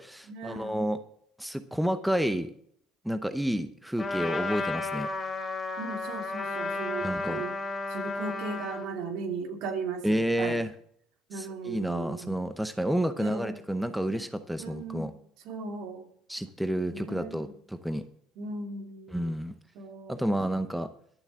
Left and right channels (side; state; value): both; normal; correlation 0.86